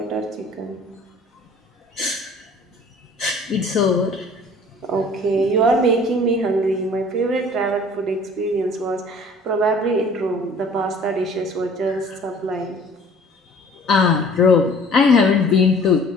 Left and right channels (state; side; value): normal; both; correlation 0.50